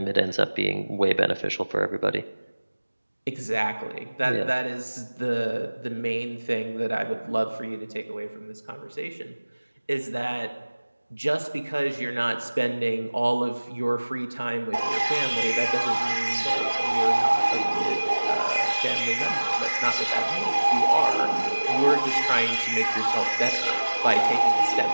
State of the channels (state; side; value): inverted; both; correlation -1.00